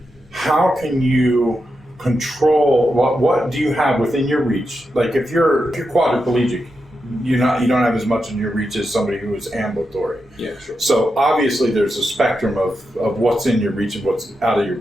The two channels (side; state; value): both; normal; correlation 0.87